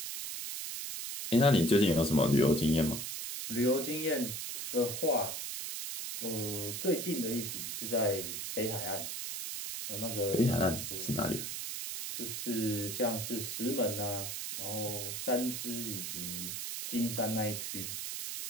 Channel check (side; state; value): right; noise; hiss, 5 dB below the sound